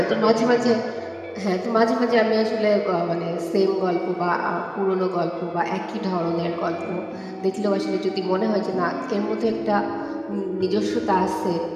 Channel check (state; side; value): identical; both; correlation 1.00